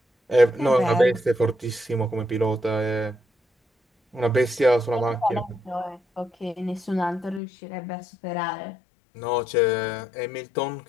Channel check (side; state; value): right; drops out; at 7.4 s